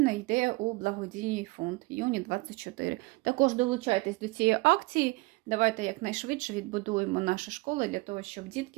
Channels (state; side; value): quieter; left; 23.5 dB